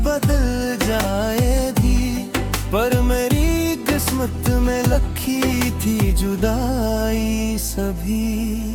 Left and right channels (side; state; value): both; identical; correlation 1.00